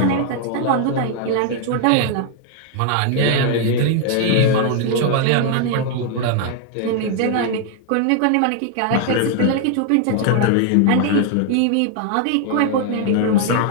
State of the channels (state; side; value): different; both; correlation 0.00